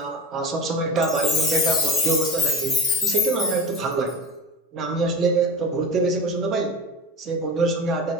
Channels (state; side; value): normal; both; correlation 0.29